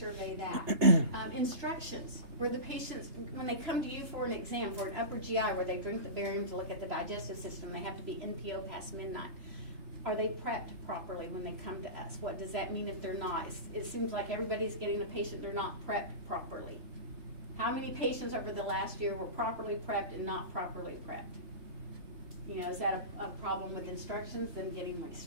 that. Instructions, where the patients, when they come to you for an exam, for an upper GI, where they drink the barium to look at the digestive system, they have to be NPO past midnight. Are they prepped properly when they come to us? What does that mean if they're not? It seems like everybody's getting a patient, they're not prepped properly. How many patients over the last year were properly prepped and not properly prepped? You know, is that a problem with instructions, them getting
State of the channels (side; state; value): left; late; 3.3 ms